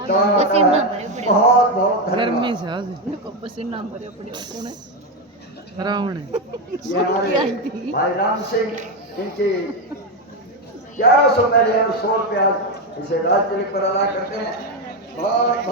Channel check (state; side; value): normal; both; correlation 0.09